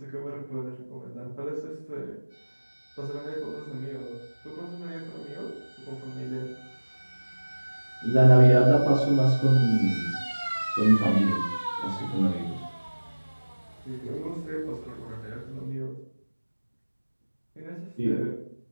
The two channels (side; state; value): both; inverted; correlation -1.00